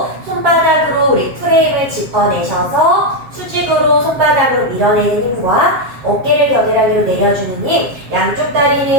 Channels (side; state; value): left; late; 7.6 ms